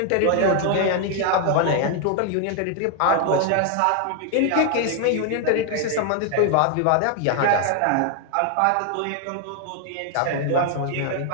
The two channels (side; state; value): both; different; correlation 0.00